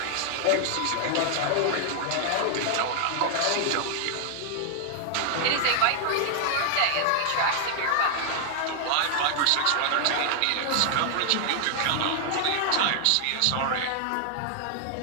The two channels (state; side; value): different; both; correlation 0.00